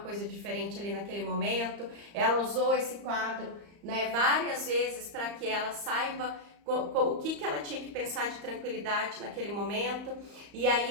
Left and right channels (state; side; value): late; left; 34 ms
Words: diferente ali naquele momento. Ela usou esse quadro, né, várias vezes para que ela saiba o que ela tinha que pensar de tranquilidade naquele momento, e aí